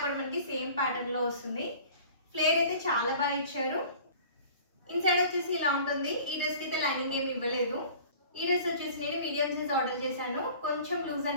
కూడా మనకి సేమ్ ప్యాటర్న్ లో వస్తుంది. ఫ్లేర్ అయితే చాలా బాగా ఇచ్చారు. ఇన్సైడ్ వచ్చేసి ఇలా ఉంటుంది. ఈ డ్రెస్ కి అయితే లైనింగ్ ఏమి ఇవ్వలేదు. ఈ డ్రెస్ వచ్చేసి నేను మీడియం సైజ్ ఆర్డర్ చేశాను. కొంచెం లూజ్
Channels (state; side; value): inverted; both; correlation -0.45